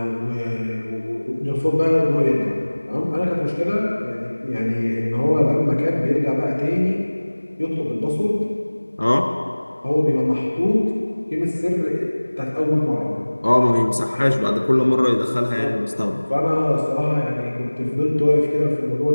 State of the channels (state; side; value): inverted; both; correlation -1.00